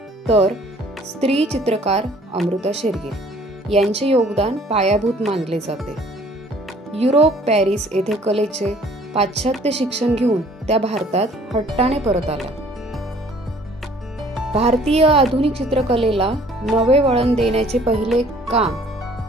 तर स्त्री चित्रकार अमृता शेरगिल यांचे योगदान पायाभूत मानले जाते। युरोप पॅरिस येथे कलेचे पाश्चात्य शिक्षण घेऊन त्या भारतात हट्टाने परत आल्या। भारतीय आधुनिक चित्रकलेला नवे वळण देण्याचे पहिले काम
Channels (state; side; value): normal; both; correlation 0.56